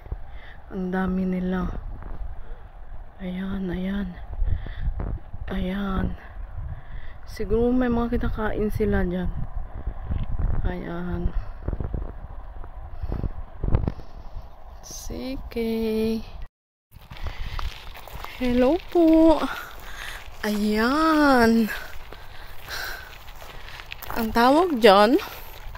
Ang dami nila. Ayan, ayan. Ayan. Siguro may mga kinakain sila dyan. Ayan. Sige. Hello po. Ayan. Ang tawag dyan,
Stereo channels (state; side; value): identical; both; correlation 1.00